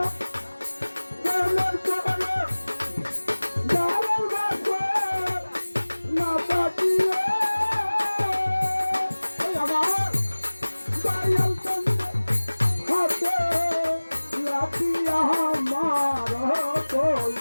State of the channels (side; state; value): both; inverted; correlation -1.00